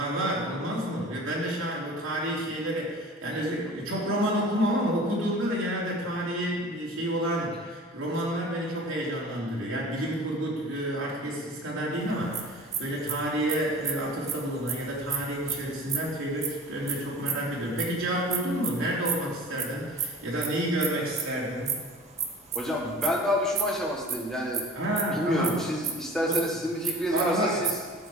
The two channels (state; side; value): normal; both; correlation 0.40